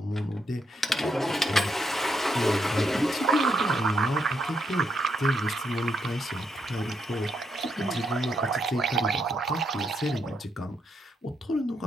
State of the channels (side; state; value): both; normal; correlation 0.78